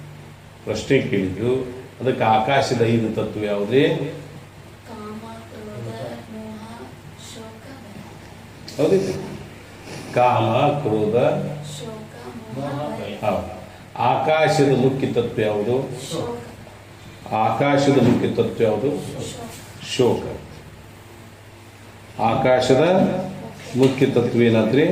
ಪ್ರಶ್ನೆ ಕೇಳಿದ್ರು. ಅದಕ್ಕೆ ಆಕಾಶದ 5 ತತ್ವ ಯಾವುದೇ? ಹೌದಿಲ್ಲ? ಕಾಮ, ಕ್ರೋಧ, ಹೌದು. ಆಕಾಶದ ಮುಖ್ಯ ತತ್ವ ಯಾವುದು? ಆಕಾಶದ ಮುಖ್ಯ ತತ್ವ ಯಾವುದು? ಶೋಕ. ಆಕಾಶದ ಮುಖ್ಯ ತತ್ವ ಏನಾದ್ರಿ?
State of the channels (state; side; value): identical; both; correlation 1.00